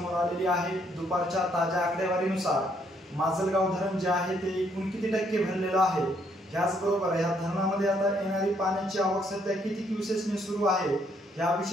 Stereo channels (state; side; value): normal; both; correlation 0.70